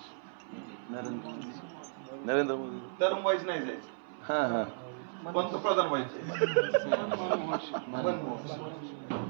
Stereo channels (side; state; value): left; silent; 55 dB below the other